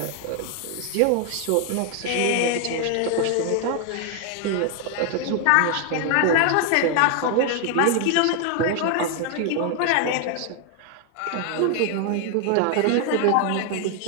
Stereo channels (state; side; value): different; both; correlation 0.00